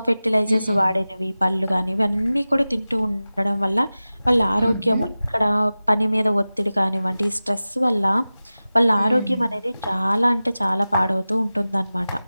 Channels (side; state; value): both; inverted; correlation -0.96